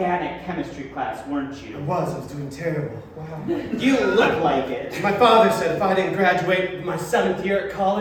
chemistry class, weren't I you? was doing terrible. Wow. You look like it. My father said if I didn't graduate my 7th year at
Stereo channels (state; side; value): identical; both; correlation 1.00